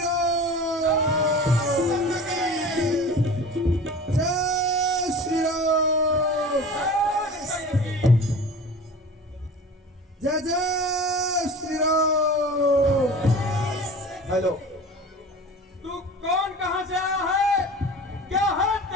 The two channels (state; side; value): normal; both; correlation 0.38